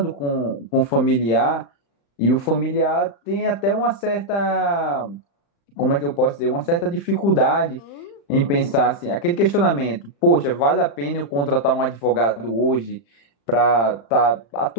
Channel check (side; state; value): right; late; 35 ms